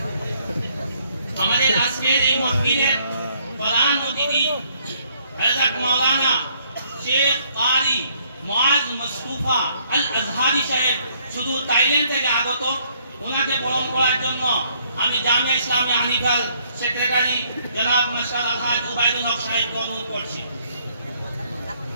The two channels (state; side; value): inverted; both; correlation -0.67